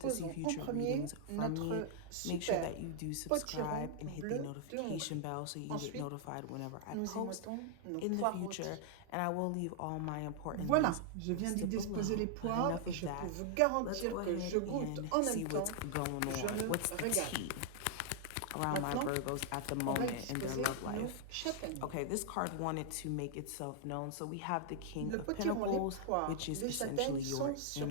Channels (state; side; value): different; both; correlation -0.01